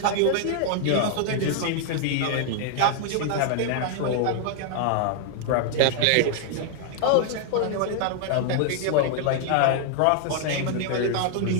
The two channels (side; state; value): both; different; correlation 0.00